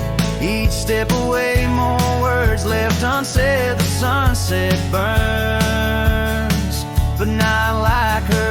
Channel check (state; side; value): identical; both; correlation 1.00